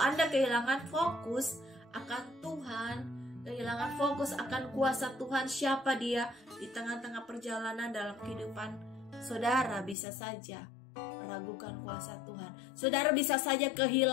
kehilangan fokus akan Tuhan, kehilangan fokus akan kuasa Tuhan, siapa Dia di tengah-tengah perjalanan dalam kehidupan saudara, bisa saja meragukan kuasa Tuhan. Saudara bisa saja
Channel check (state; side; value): drops out; right; at 10.0 s